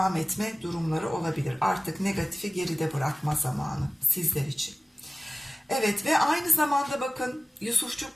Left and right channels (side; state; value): both; normal; correlation 0.97